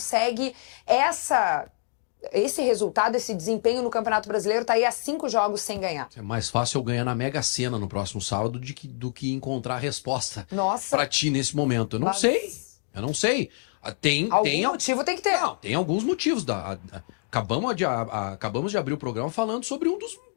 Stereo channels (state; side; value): silent; right; digital silence